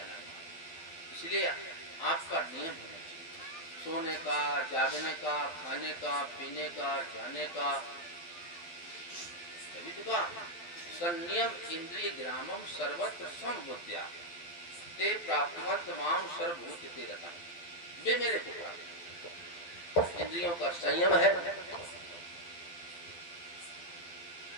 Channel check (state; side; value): late; right; 12 ms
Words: इसलिए आपका नियम होना चाहिए सोने का, जागने का, खाने का, पीने का, जाने का। तभी तो कहा संयम इंद्रिय ग्रामम सर्वत्र समबुद्ध्या ते प्राप्तवंत माम सर्वभूत ते रता। वे मेरे को प्राप्त, इंद्रियों का संयम है,